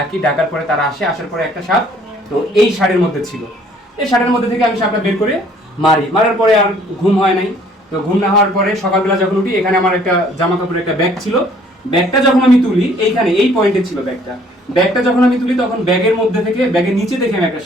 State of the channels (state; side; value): normal; both; correlation 0.59